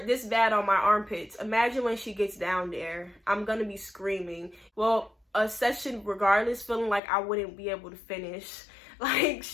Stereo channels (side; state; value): right; drops out; at 7.0 s